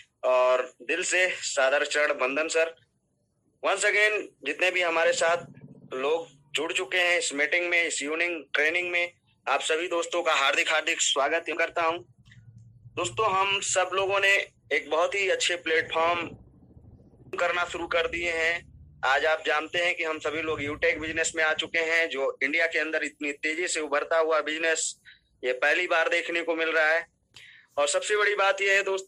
और दिल से सादर चरण वंदन सर। वंस अगेन जितने भी हमारे साथ लोग जुड़ चुके हैं इस मीटिंग में, इस इवनिंग ट्रेनिंग में, आप सभी दोस्तों का हार्दिक हार्दिक स्वागत करता हूं। दोस्तों, हम सब लोगों ने एक बहुत ही अच्छे प्लेटफॉर्म करना शुरू कर दिए हैं। आज आप जानते हैं कि हम सभी लोग यूटेक बिजनेस में आ चुके हैं, जो इंडिया के अंदर इतनी तेजी से उभरता हुआ बिजनेस ये पहली बार देखने को मिल रहा है। और सबसे बड़ी बात यह है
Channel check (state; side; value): identical; both; correlation 1.00